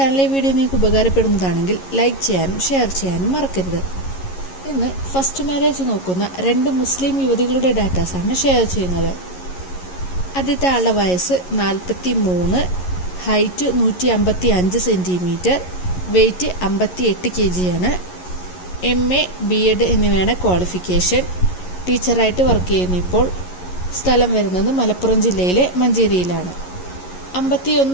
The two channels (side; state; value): right; late; 11 ms